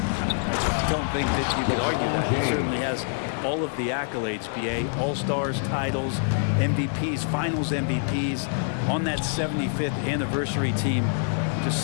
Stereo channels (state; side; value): silent; right; digital silence